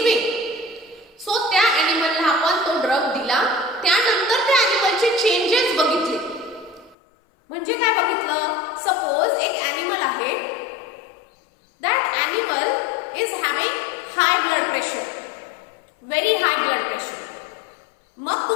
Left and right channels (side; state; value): right; drops out; at 7.0 s